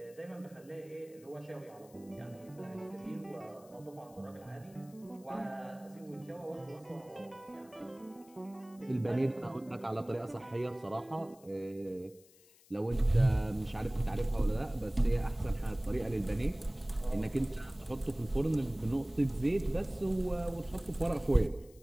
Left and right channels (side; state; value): left; noise; hiss, 26 dB below the sound